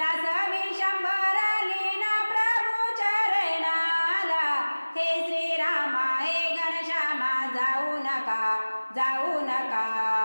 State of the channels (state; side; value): inverted; both; correlation -1.00